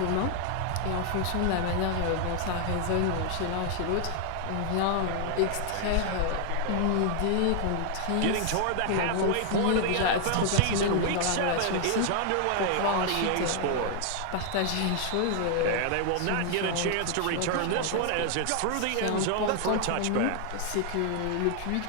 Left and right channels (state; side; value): different; both; correlation 0.00